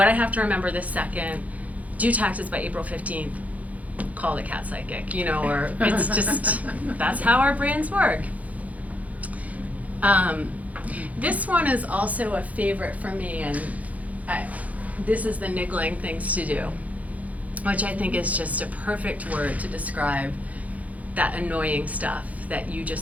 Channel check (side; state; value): left; late; 0.072 ms